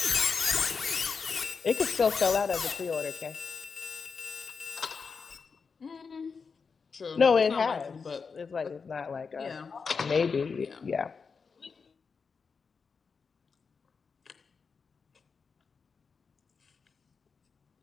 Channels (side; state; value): right; quieter; 5.3 dB